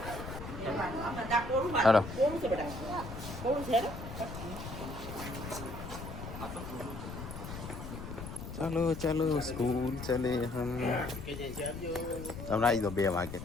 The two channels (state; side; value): noise; left; rumble, 9 dB below the sound